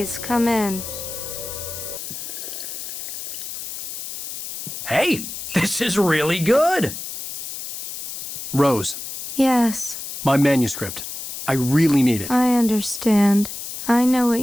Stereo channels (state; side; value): noise; left; hiss, 8 dB below the sound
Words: come in. Hey, this is really good. Rose, Yes. my manuscript. I really need it. I understand. I know what